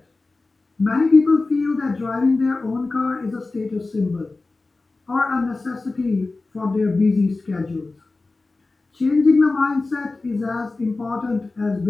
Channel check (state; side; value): quieter; right; 3.4 dB